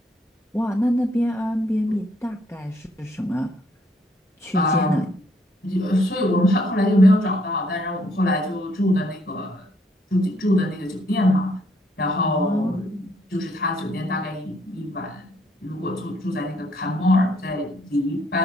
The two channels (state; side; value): normal; both; correlation 0.69